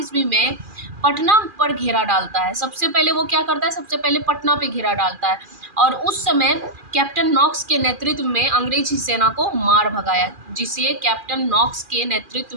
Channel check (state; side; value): late; left; 2.4 ms